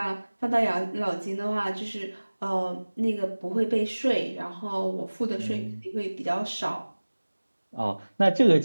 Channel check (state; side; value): inverted; both; correlation -1.00